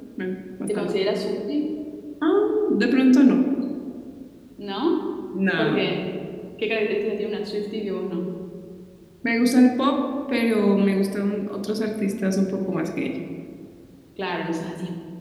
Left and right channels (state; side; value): identical; both; correlation 1.00